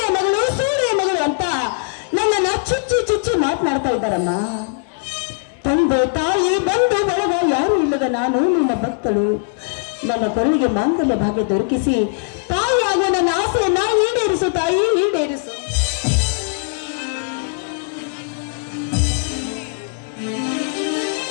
ಮಗಳು ಅಂತ ನನ್ನನ್ನ ಚುಚ್ಚಿ ಚುಚ್ಚಿ ಮಾತನಾಡ್ತಾ ಇದ್ದಾರಮ್ಮ. ತಂದೆ ತಾಯಿ ಬಂಧು ಬಳಗ ಯಾರು ಇಲ್ಲದ ನಾನು ನಿನ್ನ ಭಕ್ತಳು. ನನ್ನ ಕೊರಳಿಗೆ ಮಾಂಗಲ್ಯ ಭಾಗ್ಯ ದೊರಕಿಸಿ ತಾಯಿಯಾಗುವ ನನ್ನ ಆಸೆಯನ್ನ ಈಡೇರಿಸು ತಾಯಿ, ಈಡೇರಿಸು.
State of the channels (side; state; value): right; silent; 66 dB below the other